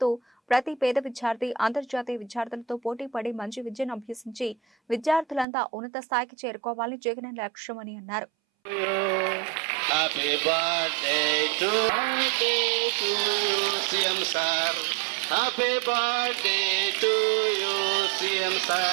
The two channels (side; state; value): left; drops out; at 5.5 s